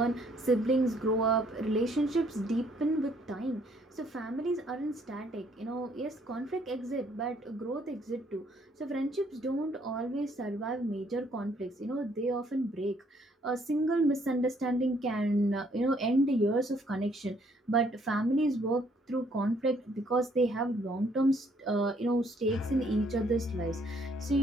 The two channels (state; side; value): normal; both; correlation 0.66